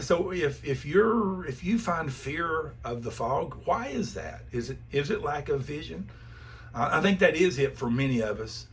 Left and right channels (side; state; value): both; identical; correlation 1.00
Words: if you find fear of the fog, why is that? Is it lack of vision? I think that is it for many of us.